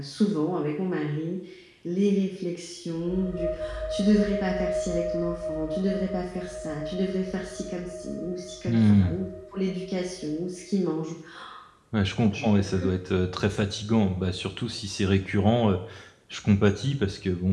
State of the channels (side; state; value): both; identical; correlation 1.00